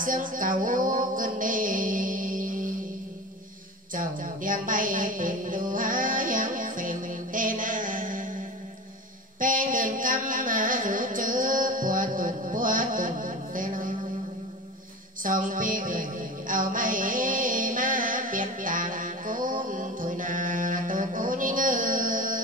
xương cầu cơn đi chồng đem bay tìm đu há yang phèn tê na pen đường căm mà rủ chữ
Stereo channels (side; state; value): both; normal; correlation 0.31